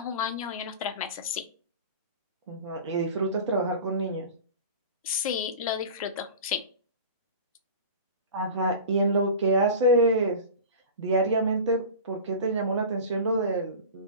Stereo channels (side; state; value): both; inverted; correlation -0.34